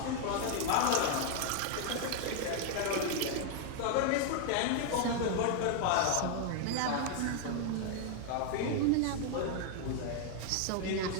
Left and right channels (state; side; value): different; both; correlation 0.00